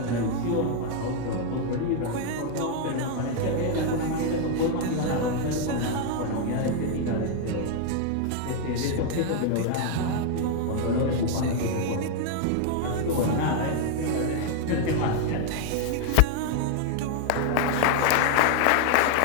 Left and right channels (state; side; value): different; both; correlation 0.00